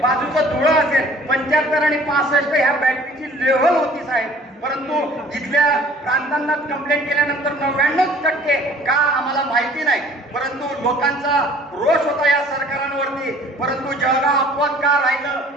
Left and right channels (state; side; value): normal; both; correlation 0.52